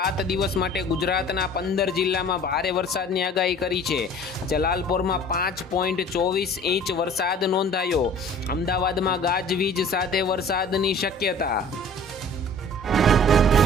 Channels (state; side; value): normal; both; correlation 0.47